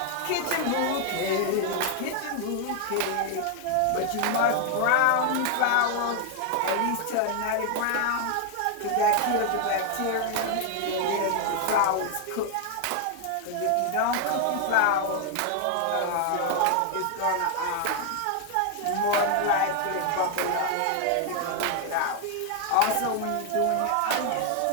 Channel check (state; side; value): different; both; correlation 0.00